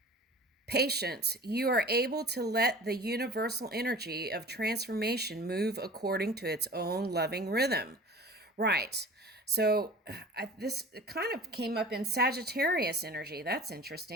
Patience. You are able to let the universal energy of transformation move according to its own loving rhythm. Right. So this kind of came up in Sagittarius energy. That's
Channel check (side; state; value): both; normal; correlation 0.41